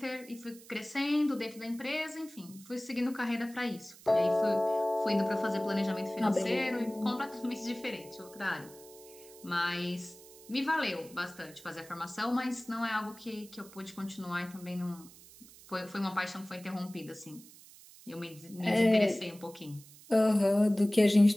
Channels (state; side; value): noise; right; hiss, 21 dB below the sound